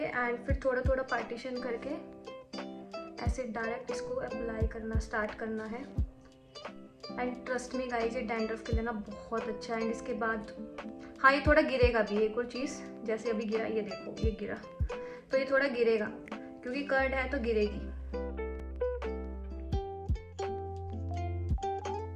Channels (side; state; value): both; identical; correlation 1.00